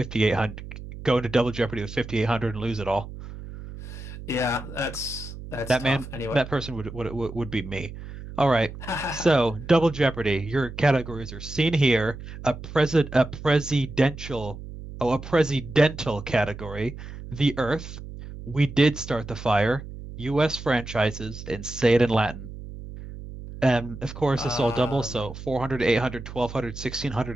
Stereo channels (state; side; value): noise; right; hum, 12 dB below the sound